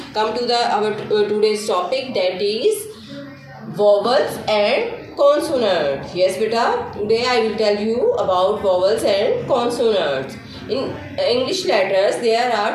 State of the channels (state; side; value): identical; both; correlation 1.00